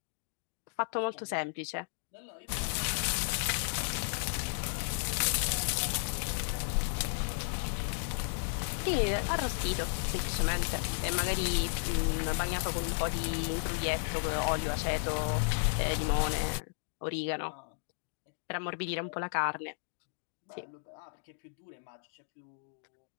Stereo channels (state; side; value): silent; right; digital silence